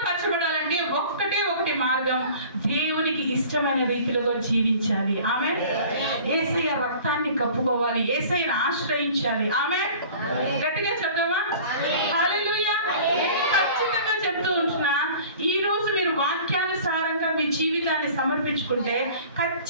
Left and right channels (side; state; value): both; inverted; correlation -0.45